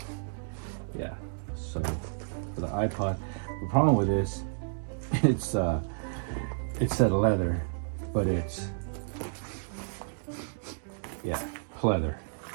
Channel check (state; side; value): silent; left; digital silence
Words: yeah, so for the iPod, the problem with this, it said leather, but it's pleather,